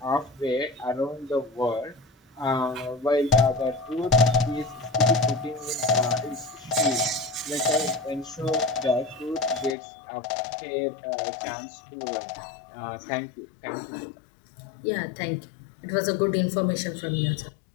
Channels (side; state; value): right; drops out; at 9.8 s